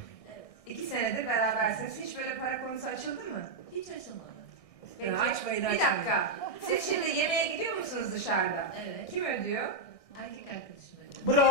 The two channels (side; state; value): right; late; 1.6 ms